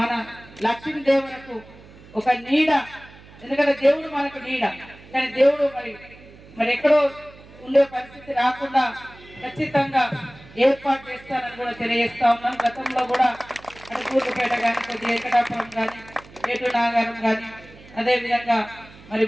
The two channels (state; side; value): noise; right; hum, 22 dB below the sound